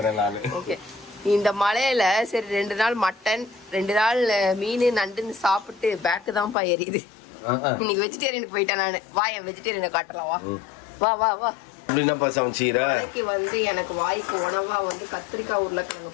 நான். இந்த மழையில சரி 2 நாள் மட்டன், 2 நாள் மீன் நண்டுன்னு சாப்பிட்டு பேக்கு தான்ப்பா எரியுது. இன்னைக்கு வெஜிடேரியனுக்கு போயிட்டேன் நானு. வா, என் வெஜிடேரியனை காட்டலாம். வா வா வா. அப்படின்னாப்பா சமைச்சீரா? வந்து எனக்கு வாய்க்கு உணவா வந்து கத்திரிக்காய் உருளைக்கிழங்கு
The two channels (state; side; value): drops out; right; at 6.6 s